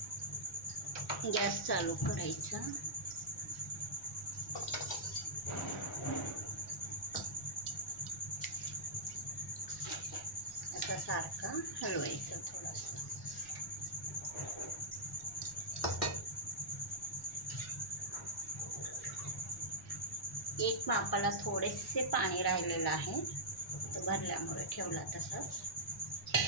गॅस चालू करायचा. आता सारखा हलवायचं थोडासा. एक मापाला थोडेसे पाणी राहिलेलं आहे, तो भरल्यामुळे ठेवला तसंच.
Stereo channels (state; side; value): noise; left; rumble, 19 dB below the sound